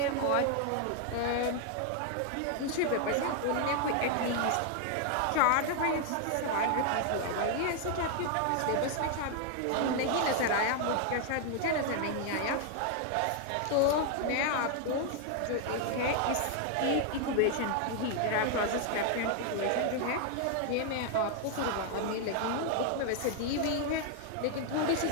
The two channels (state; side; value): different; both; correlation 0.00